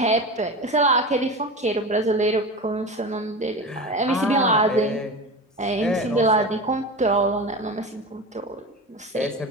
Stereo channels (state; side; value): normal; both; correlation 0.27